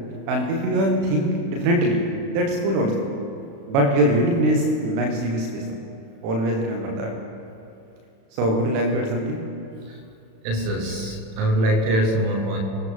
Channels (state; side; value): late; left; 36 ms